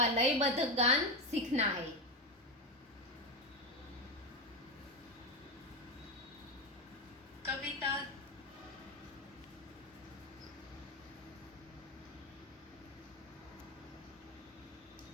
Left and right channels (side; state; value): both; normal; correlation 0.14